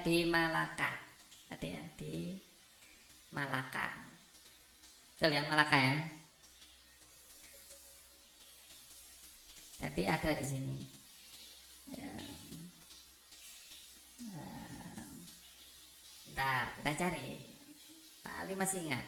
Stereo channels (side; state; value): both; identical; correlation 1.00